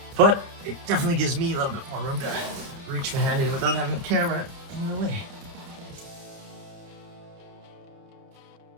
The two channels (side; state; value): left; late; 30 ms